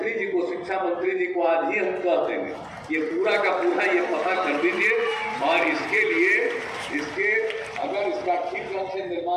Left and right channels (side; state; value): both; identical; correlation 1.00